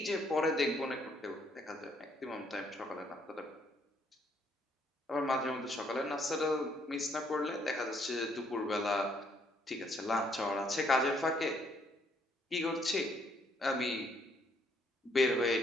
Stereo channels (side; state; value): both; normal; correlation 0.68